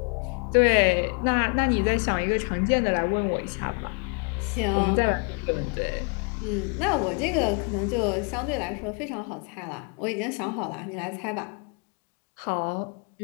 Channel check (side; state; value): right; quieter; 36.3 dB